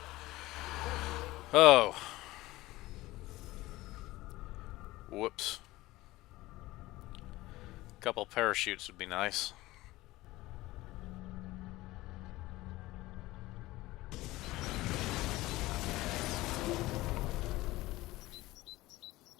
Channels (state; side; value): quieter; right; 18.5 dB